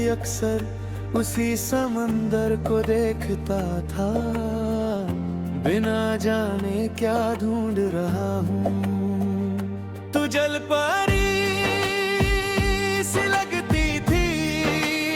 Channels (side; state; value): both; identical; correlation 1.00